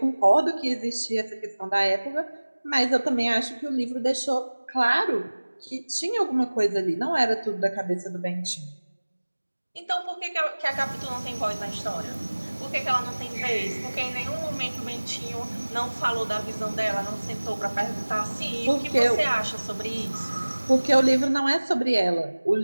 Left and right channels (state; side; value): inverted; both; correlation -1.00